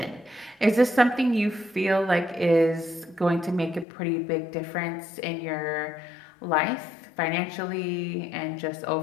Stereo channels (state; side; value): drops out; right; at 3.9 s